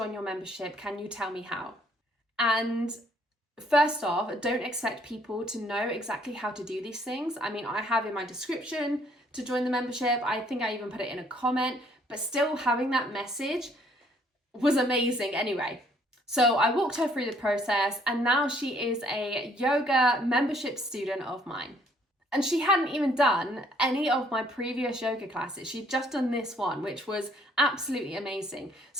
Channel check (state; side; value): normal; both; correlation 0.64